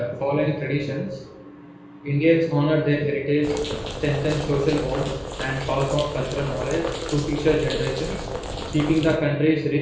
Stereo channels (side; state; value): both; identical; correlation 1.00